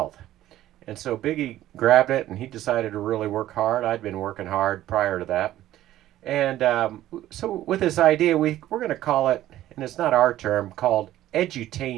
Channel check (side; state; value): left; quieter; 13.8 dB